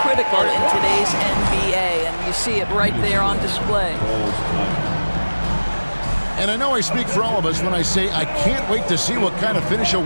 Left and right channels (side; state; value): both; inverted; correlation -1.00